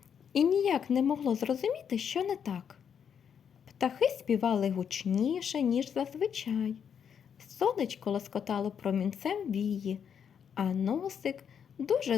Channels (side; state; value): right; quieter; 7.7 dB